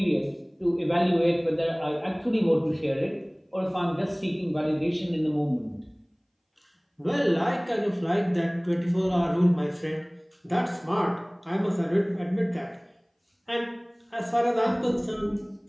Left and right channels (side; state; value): both; identical; correlation 1.00